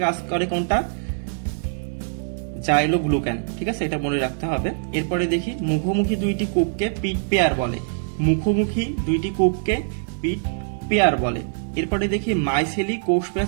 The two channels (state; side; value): silent; left; digital silence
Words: কাজ করে কোনটা? জাইলোগ্লুকান। ঠিক আছে, এটা মনে রাখতে হবে। এরপরে দেখি মুখোমুখি দুইটি কূপকে পিট পেয়ার বলে। মুখোমুখি দুইটি কূপকে পিট পেয়ার বলে। এরপরে দেখি মাইসেলি কোষ